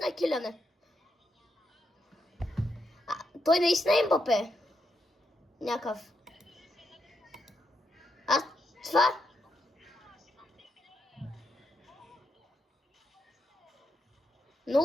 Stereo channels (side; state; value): both; normal; correlation 0.82